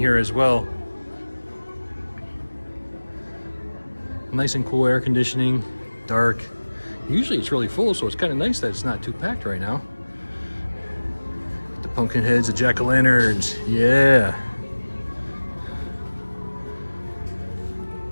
as well. Nice and cool air conditioning, dark. Usually it's really full, so it's kind of nice that it's not too packed right now. The pumpkin heads, the jack-o'-lanterns, yeah.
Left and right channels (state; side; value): inverted; both; correlation -1.00